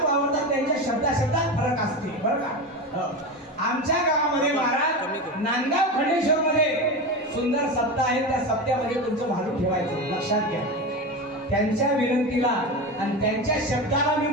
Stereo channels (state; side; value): normal; both; correlation 0.22